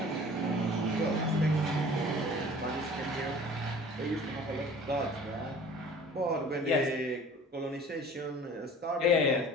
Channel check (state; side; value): normal; both; correlation 0.46